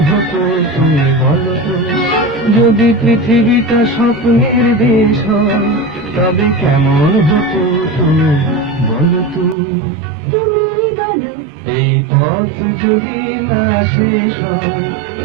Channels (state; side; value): drops out; left; at 9.6 s